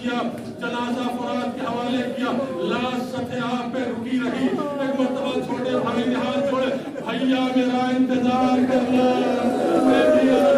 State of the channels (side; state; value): both; identical; correlation 1.00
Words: کیا. جنازہ فرات کے حوالے کیا. لاش سطح آب پہ رکی رہی. ایک مرتبہ چھوٹے بھائی نے ہاتھ جوڑے بھیا میرا انتظار کرنا میں بھی